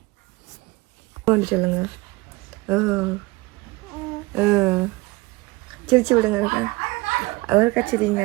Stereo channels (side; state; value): left; quieter; 22.8 dB